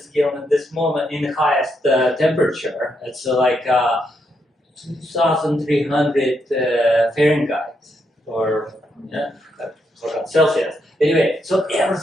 kiln at this moment in the highest temperature. It's like 2,300 Fahrenheit or Celsius. Anyway, so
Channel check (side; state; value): both; normal; correlation 0.79